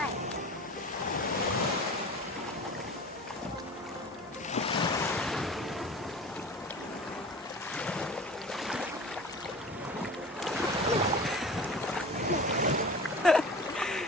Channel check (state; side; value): normal; both; correlation 0.38